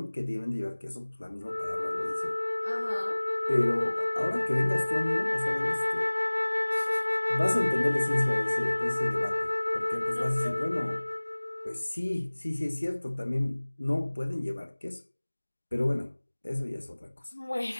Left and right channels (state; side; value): inverted; both; correlation -1.00